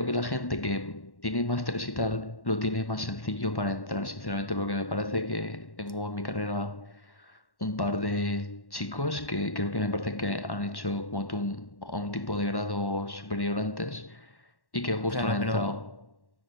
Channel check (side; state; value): right; late; 1.1 ms